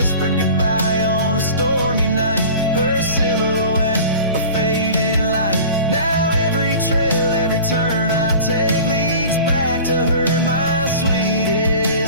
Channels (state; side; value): inverted; both; correlation -0.40